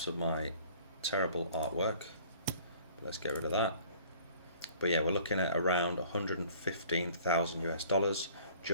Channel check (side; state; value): both; inverted; correlation -0.52